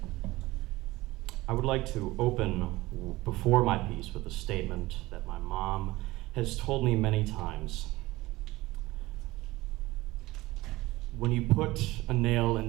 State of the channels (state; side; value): quieter; left; 19.3 dB